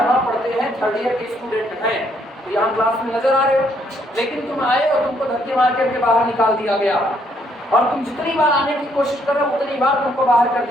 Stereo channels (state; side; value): normal; both; correlation 0.70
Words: पढ़ते हैं, 3rd ईयर के स्टूडेंट हैं, तो यहाँ क्लास में नजर आ रहे हो, लेकिन तुम आए और तुमको धक्के मार करके बाहर निकाल दिया गया, और तुम जितनी बार आने की कोशिश कर रहे हो उतनी बार तुमको बाहर कर